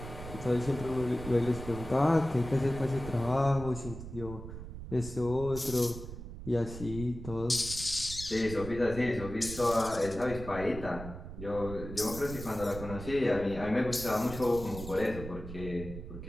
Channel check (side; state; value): right; noise; rumble, 10 dB below the sound